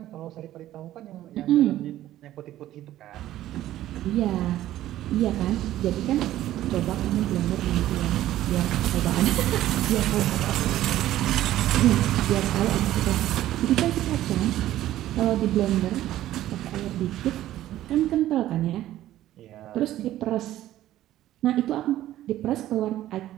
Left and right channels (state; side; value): quieter; left; 13.7 dB